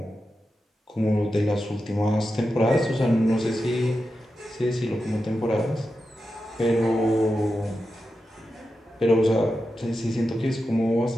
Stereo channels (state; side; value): normal; both; correlation 0.90